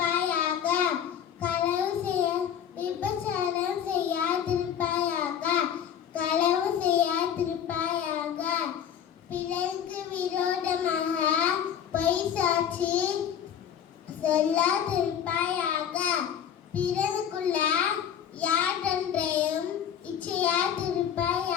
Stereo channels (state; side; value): quieter; right; 9.0 dB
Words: களவு விபச்சாரம் செய்யாதிருப்பாயாக. களவு செய்யாதிருப்பாயாக. பிறருக்கு விரோதமாக பொய் சாட்சி சொல்லாதிருப்பாயாக. பிறருக்குள்ள யாதொன்றையும்